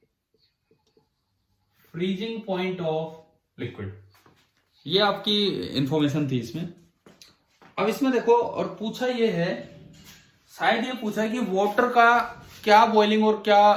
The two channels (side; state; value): both; identical; correlation 1.00